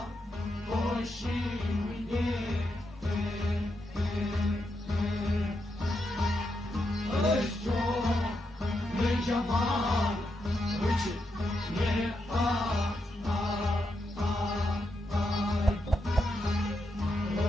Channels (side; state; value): both; normal; correlation 0.83